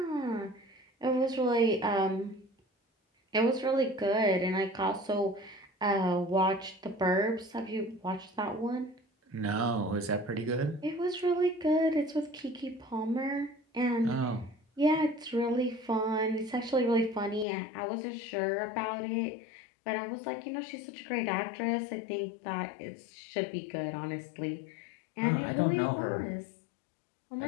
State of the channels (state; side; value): drops out; right; at 17.4 s